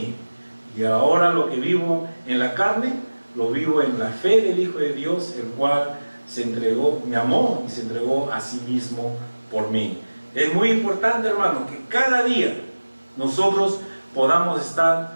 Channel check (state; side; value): inverted; both; correlation -1.00